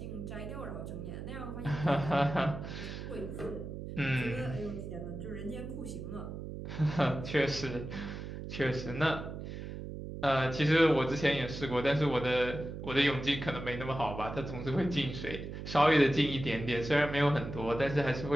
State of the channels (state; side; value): noise; right; hum, 8 dB below the sound